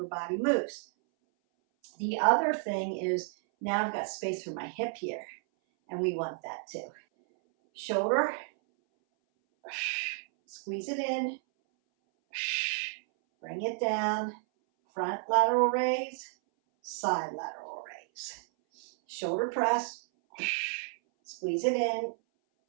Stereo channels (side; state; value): left; silent; 57 dB below the other